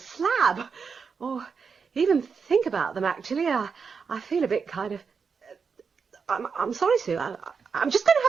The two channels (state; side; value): quieter; left; 5.7 dB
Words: or even think about them, actually, I feel a bit kind of... I'm sorry, Sue. I'm just going to